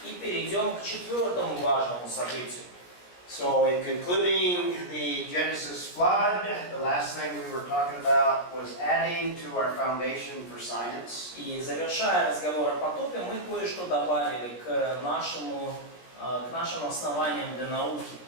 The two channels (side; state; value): right; late; 17 ms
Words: И перейдем к четвертому важному событию. So in concluding the Genesis flood, the last thing we were talking about was adding to our foundation for science. И завершая разговор о потопе, мы кое-что добавили к нашим основаниям для науки.